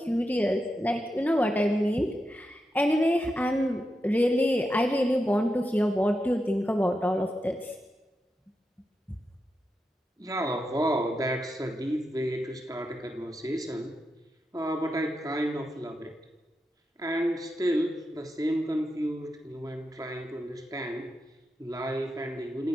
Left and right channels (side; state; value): both; normal; correlation 0.87